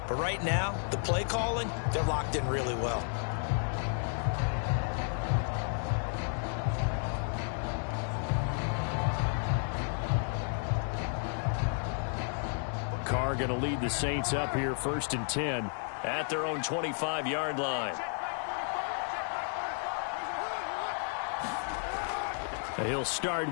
But right now, the play calling, they're locked in really well. Carr going to lead the Saints up here 1st and 10 at their own 25-yard line. He'll start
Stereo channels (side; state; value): right; silent; 56 dB below the other